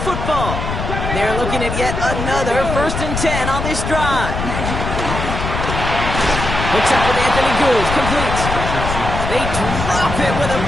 football. They're looking at yet another 1st and 10 on this drive. Hooks up with Anthony Gould, complete. They drop it with a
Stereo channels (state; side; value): noise; left; rumble, 4 dB below the sound